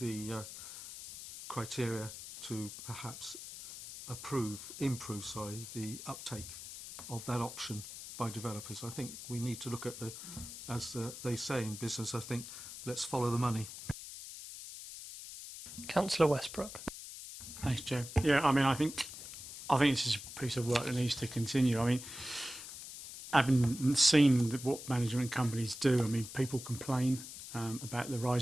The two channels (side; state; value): left; noise; hiss, 11 dB below the sound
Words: criteria to perhaps improve the uptake of that option by developers. I think we need to look at they say in business, I think, let's follow the money. Councillor Westbrook. Thanks, Joe. Yeah, I mean, I think this is a piece of work that needs to continue. I mean, having seen what management companies do, I mean, people complain about the